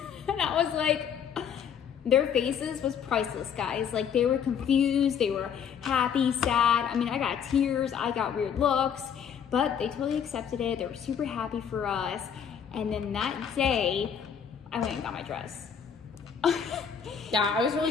I was like, their faces was priceless, guys. Like they were confused, they were happy, sad. I mean, I got tears, I got weird looks, but they totally accepted it. They were super happy for us. And then that day, I went and got my dress. Yeah, I was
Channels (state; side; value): quieter; right; 7.8 dB